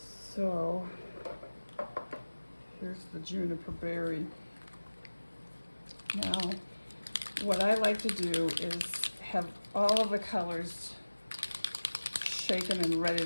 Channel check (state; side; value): inverted; both; correlation -1.00